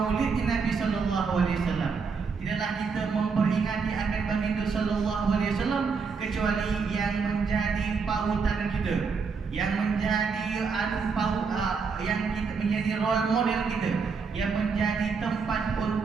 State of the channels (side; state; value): left; quieter; 5.3 dB